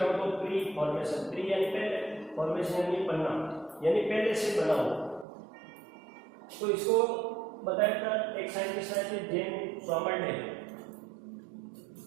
तो प्री फॉर्मेशन। प्री यानी पहले, फॉर्मेशन यानी बनना, यानी पहले से बना हुआ। तो इसको बताया था एक साइंटिस्ट आए थे, जेन स्वामरडेल।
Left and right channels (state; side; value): drops out; left; at 5.2 s